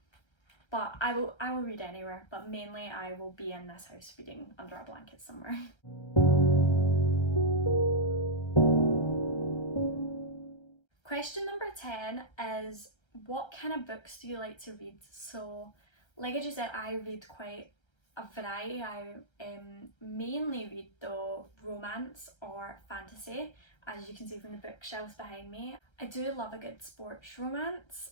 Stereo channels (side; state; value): right; late; 1.3 ms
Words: But I will read anywhere, but mainly I will be in this house reading under a blanket somewhere. Question number 10 is, what kind of books do you like to read? So like I just said, I read quite a variety. I mainly read though romance or fantasy, as you can see from the bookshelves behind me. I do love a good sports romance